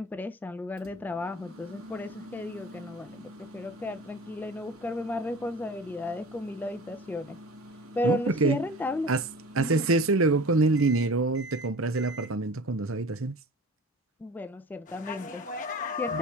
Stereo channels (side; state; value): both; normal; correlation 0.39